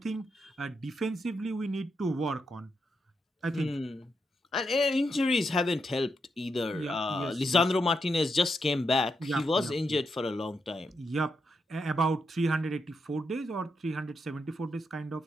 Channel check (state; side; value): normal; both; correlation 0.83